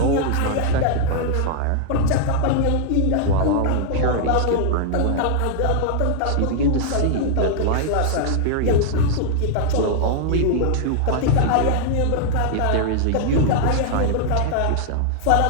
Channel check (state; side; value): different; both; correlation 0.00